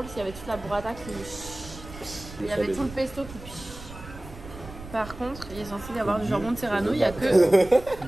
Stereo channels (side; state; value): right; noise; rumble, 14 dB below the sound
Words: s'il y avait toute la burrata qui. Il y avait tout le pesto qui. Par contre, il est censé y avoir du jambon de Serrano, il n'y a que.